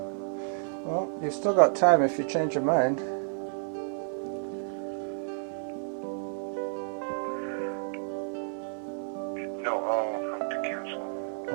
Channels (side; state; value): left; silent; digital silence